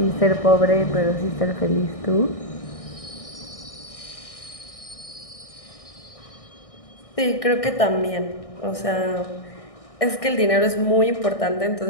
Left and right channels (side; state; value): right; late; 1.6 ms